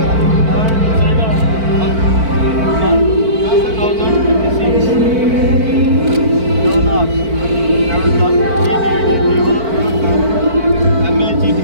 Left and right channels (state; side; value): late; left; 4.5 ms